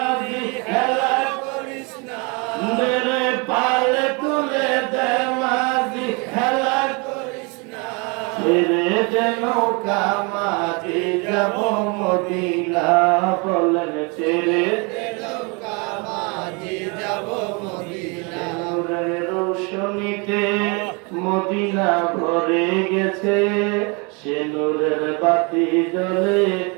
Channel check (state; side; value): quieter; left; 31.0 dB